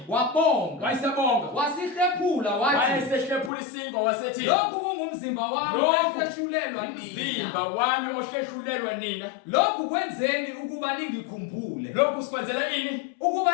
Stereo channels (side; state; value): right; drops out; at 3.5 s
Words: wabonga wayisebonga wasihlephula wathi wayesehlephula isinkwa wasethi lokhu kungumzimba wami ohleshulelwa nina umzimba wami ohleshulelwa nina lokhu kwenzeni ukuba ningikhumbule lokhu sikwenzela ini